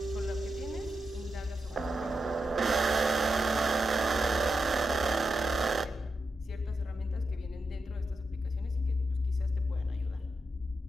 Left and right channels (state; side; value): normal; both; correlation 0.87